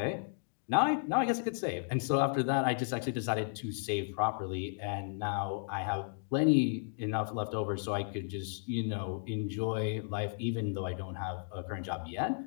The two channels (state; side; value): silent; right; digital silence